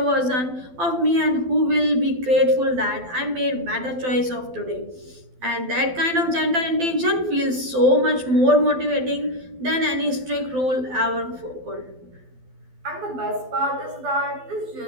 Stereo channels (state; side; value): late; left; 12 ms